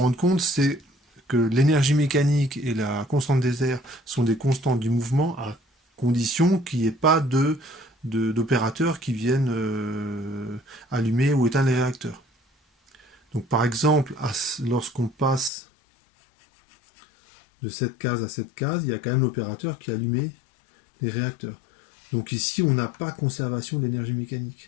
compte, c'est que l'énergie mécanique et la constante des airs sont des constantes du mouvement à condition qu'il n'y ait pas d'opérateurs qui viennent allumer ou éteindre les réacteurs. Donc par exemple, lorsqu'on passe de cette case à cette case, il y a quand même l'opérateur qui a allumé les réacteurs. Donc ici, on n'a pas conservation d'énergie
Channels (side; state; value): right; drops out; at 15.5 s